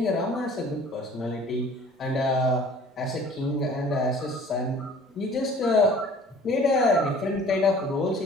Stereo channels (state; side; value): normal; both; correlation 0.49